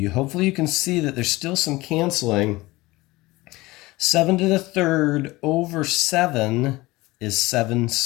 hopefully you can see that there's still some canceling. 7 to the third over 7 is 7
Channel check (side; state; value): right; quieter; 20.4 dB